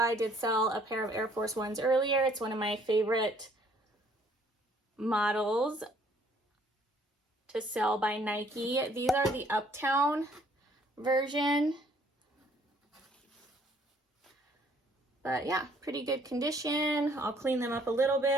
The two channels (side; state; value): both; normal; correlation 0.62